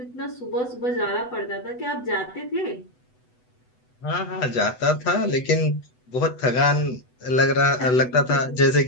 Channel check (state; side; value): late; right; 8.0 ms